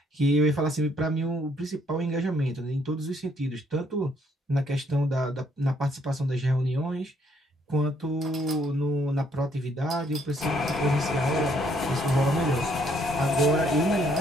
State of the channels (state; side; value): normal; both; correlation 0.68